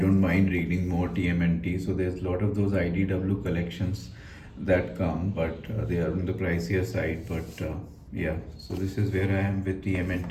mind reading more TMNT. So there's a lot of those IDW collections that come, but they are on the pricier side. But yeah, so this is where I am with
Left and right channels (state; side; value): identical; both; correlation 1.00